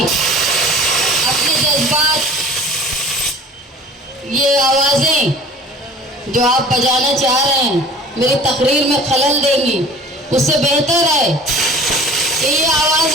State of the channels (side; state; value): both; normal; correlation 0.44